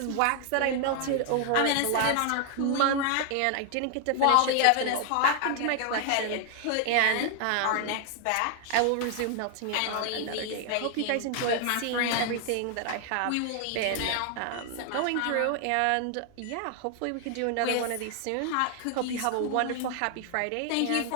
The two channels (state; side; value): different; both; correlation 0.00